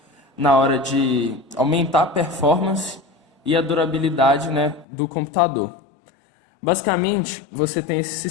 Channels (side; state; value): right; drops out; at 4.9 s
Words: na hora de aumentar a performance e a durabilidade, né, do computador. Basicamente, você tem esse